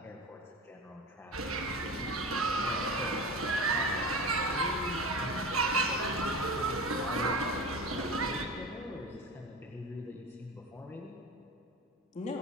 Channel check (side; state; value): both; normal; correlation 0.30